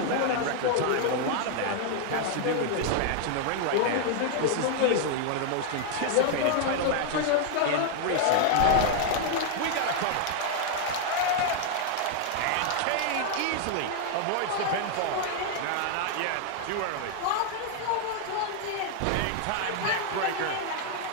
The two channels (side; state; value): both; different; correlation 0.00